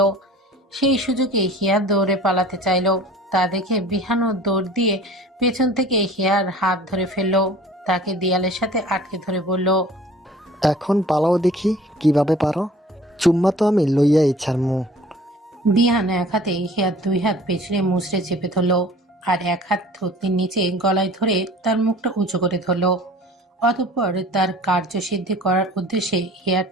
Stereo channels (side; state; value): both; normal; correlation 0.47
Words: সেই সুযোগে হিয়া দৌড়ে পালাতে চাইল। তা দেখে বিহানও দৌড় দিয়ে পেছন থেকে হিয়ার হাত ধরে ফেলল। তাকে দেয়ালের সাথে আটকে ধরে বলল, এখন পালাও দেখি কিভাবে পারো। চুম্মা তো আমি লইয়াই ছাড়মু। বিহান এক হাতে হিয়ার দুই হাত পেছনে মুচড়ে চেপে ধরল, আর এক হাত থুতনির নিচে গলায় ধরে তার মুখটা উঁচু করে ধরল। অতঃপর তার কার্যসিদ্ধি করার উদ্দেশ্যে হিয়ার